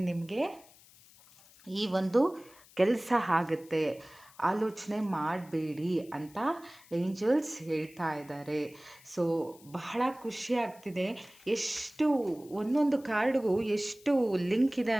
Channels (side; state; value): left; noise; hiss, 25 dB below the sound